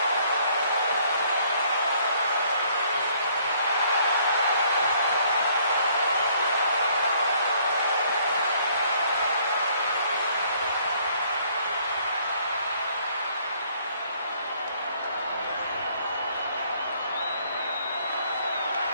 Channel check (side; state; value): both; inverted; correlation -0.63